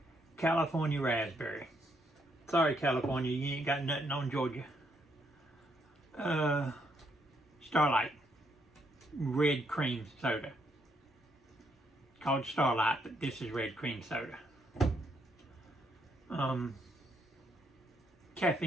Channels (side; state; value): both; normal; correlation 0.74